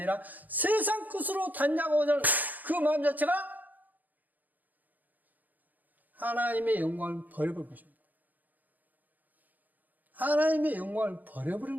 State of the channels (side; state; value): left; late; 0.083 ms